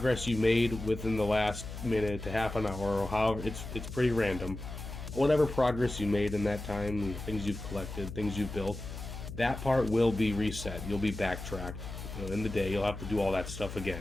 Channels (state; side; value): noise; left; hum, 9 dB below the sound